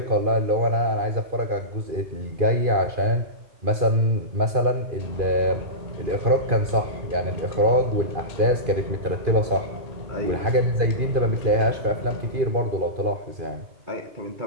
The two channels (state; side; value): late; left; 2.5 ms